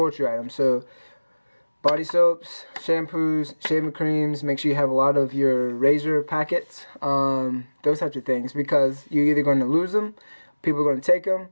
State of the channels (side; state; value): both; inverted; correlation -1.00